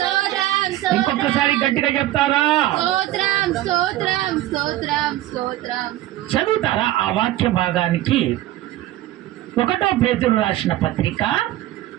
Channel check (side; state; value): left; quieter; 15.0 dB